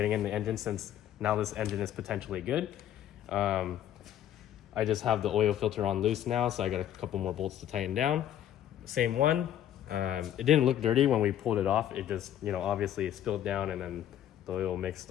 in the engine, since now this engine is potentially good. I just have the oil filter on loose now, so I got a couple more bolts to tighten down. Same one. It didn't look dirty when we pulled it off. It just, obviously it spilled down and then the oil mixed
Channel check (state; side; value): quieter; right; 11.1 dB